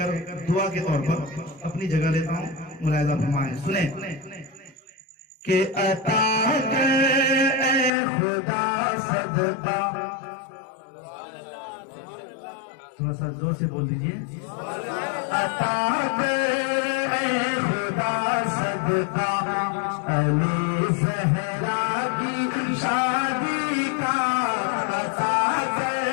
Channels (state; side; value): drops out; right; at 7.9 s